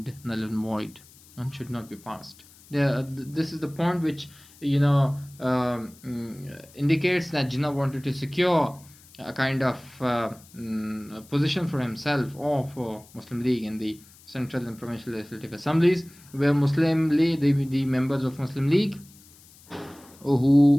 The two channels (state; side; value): noise; left; hiss, 25 dB below the sound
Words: null and void and should not be passed. This is the point which indicates that Jinnah wanted to secure a kind of position for himself or for Muslim League in the central and provincial legislative assemblies, where Muslim League, the members of Muslim League